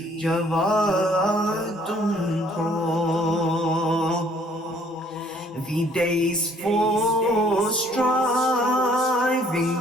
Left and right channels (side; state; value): both; normal; correlation 0.61